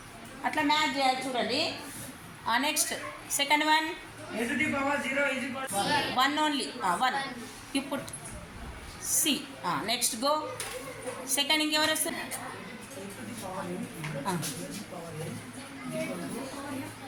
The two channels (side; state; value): both; identical; correlation 1.00